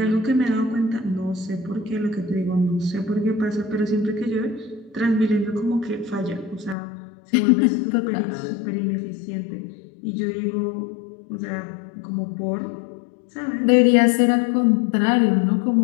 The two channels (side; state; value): right; drops out; at 6.8 s